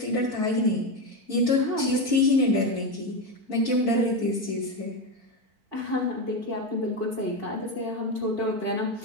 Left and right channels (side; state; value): left; late; 4.5 ms